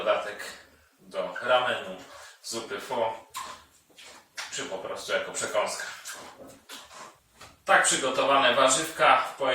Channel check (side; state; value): both; identical; correlation 1.00